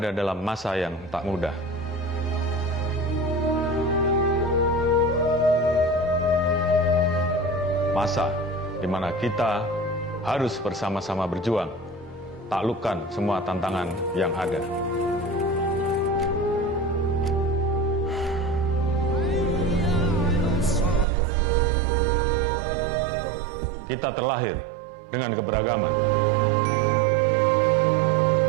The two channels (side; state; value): left; drops out; at 21.1 s